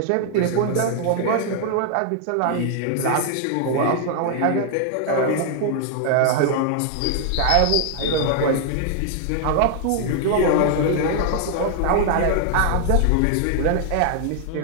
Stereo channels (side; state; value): both; different; correlation 0.00